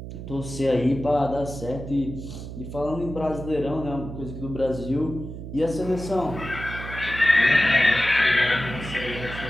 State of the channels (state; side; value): noise; right; hum, 10 dB below the sound